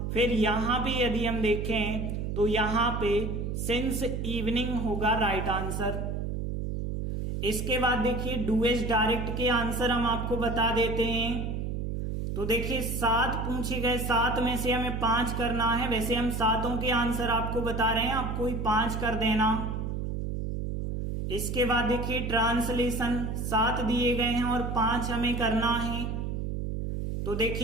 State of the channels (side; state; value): right; noise; hum, 3 dB below the sound